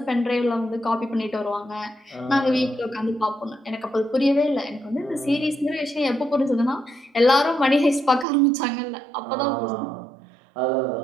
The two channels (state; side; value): drops out; left; at 8.2 s